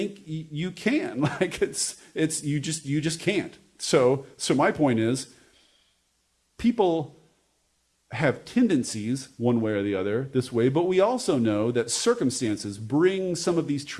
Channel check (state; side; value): identical; both; correlation 1.00